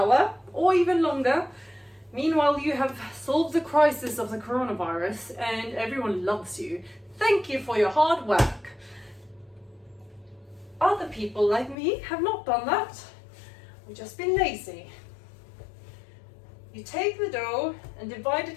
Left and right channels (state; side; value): drops out; right; at 11.8 s